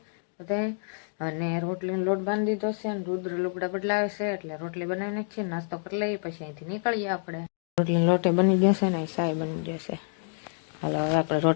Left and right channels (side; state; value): right; silent; 59 dB below the other